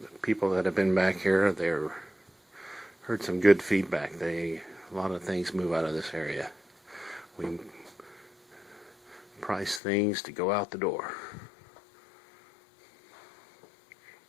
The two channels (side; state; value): right; drops out; at 9.8 s